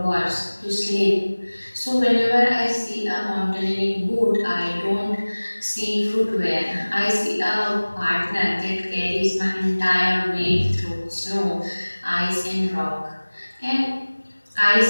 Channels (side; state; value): both; inverted; correlation -1.00